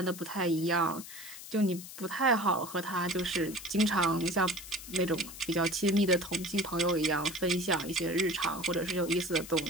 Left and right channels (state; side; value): noise; left; hiss, 13 dB below the sound